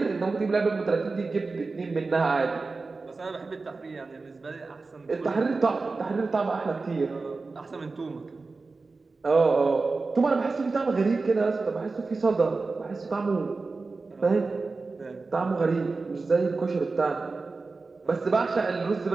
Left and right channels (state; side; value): quieter; left; 3.9 dB